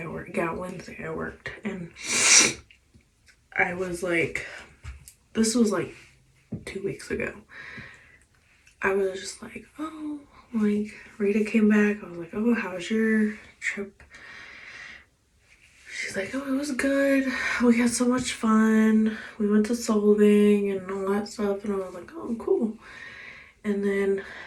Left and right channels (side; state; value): both; identical; correlation 1.00